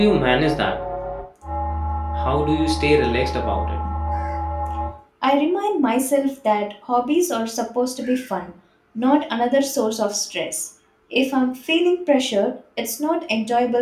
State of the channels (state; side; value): identical; both; correlation 1.00